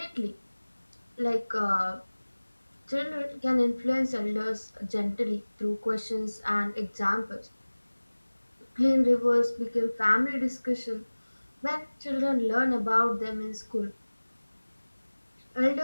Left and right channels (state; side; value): inverted; both; correlation -1.00